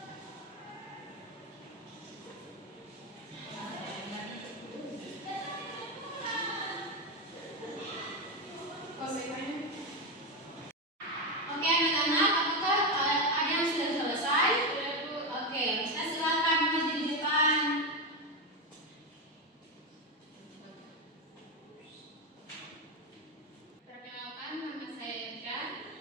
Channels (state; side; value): normal; both; correlation 0.12